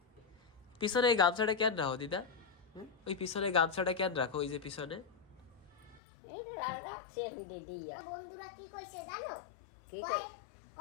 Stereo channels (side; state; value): right; drops out; at 6.0 s